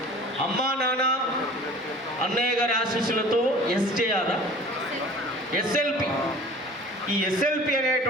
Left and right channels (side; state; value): both; normal; correlation 0.44